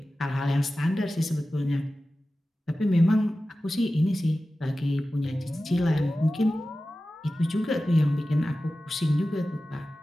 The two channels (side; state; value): both; normal; correlation 0.95